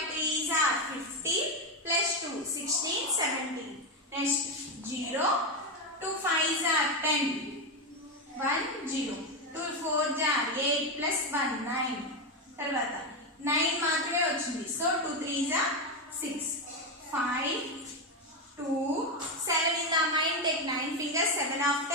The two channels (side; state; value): both; normal; correlation 0.10